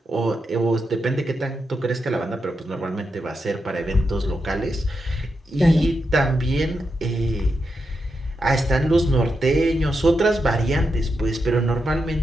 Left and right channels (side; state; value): both; normal; correlation 0.86